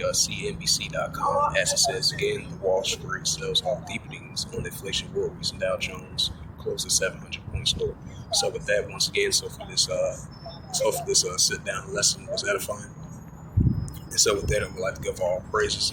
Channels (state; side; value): identical; both; correlation 1.00